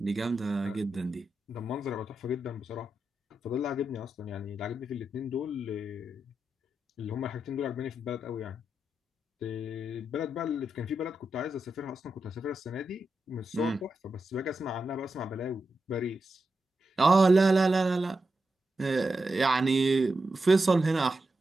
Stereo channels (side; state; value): both; normal; correlation 0.88